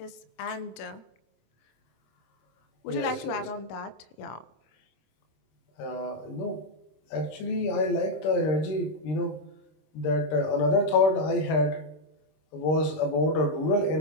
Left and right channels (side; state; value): right; late; 26 ms